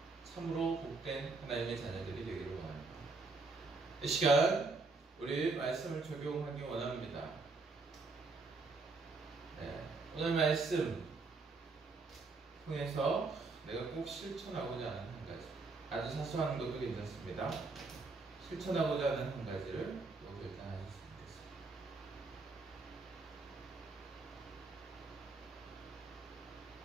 참으로 복된 하나님의 자녀들이 되기를 원합니다. 이 시간 우리 말씀을 적용하기 원합니다. 오늘 말씀 통해서 내가 꼭 실천하고자 하는 한 가지, 아주 사소한 것도 괜찮습니다. 실천하고자 하는 한 가지를 또 결단하셨으면 좋겠습니다.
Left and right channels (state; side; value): quieter; left; 3.9 dB